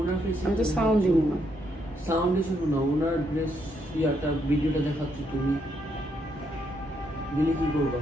আমি তো সাউন্ড দিব না। সাউন্ড শুনো না, ওনার ড্রেস ইয়াটা ভিডিওটা দেখাচ্ছি, তুমি দিলে কি করবা?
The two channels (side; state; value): both; normal; correlation 0.76